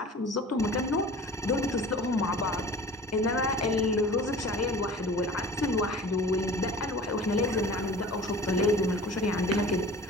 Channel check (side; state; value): both; normal; correlation 0.42